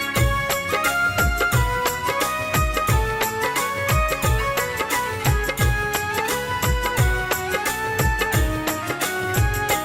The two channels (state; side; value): identical; both; correlation 1.00